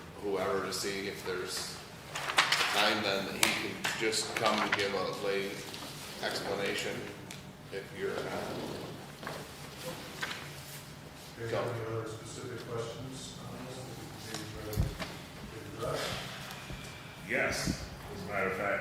whoever to see if there's time then that he can just come and give a lay explanation if you're, Do you have any other specific questions on this? Maybe try to get addressed? Yes, as a matter of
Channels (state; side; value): identical; both; correlation 1.00